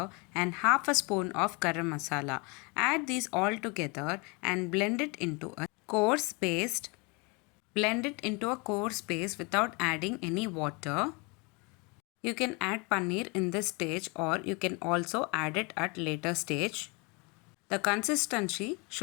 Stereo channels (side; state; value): right; quieter; 29.8 dB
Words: and half a spoon of garam masala. Add these all together and blend it into a coarse paste. Blend it into a coarse paste without adding any water. You can add paneer in this stage or you can also add it at later stage. The consistency